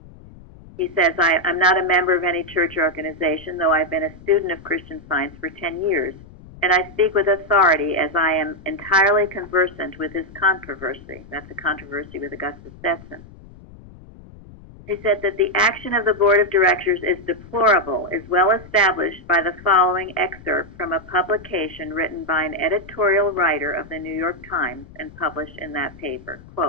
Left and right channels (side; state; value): left; noise; rumble, 20 dB below the sound